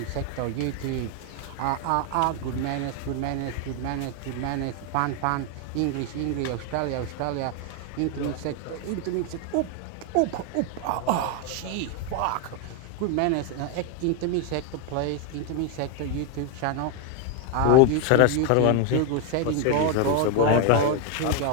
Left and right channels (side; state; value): both; different; correlation 0.01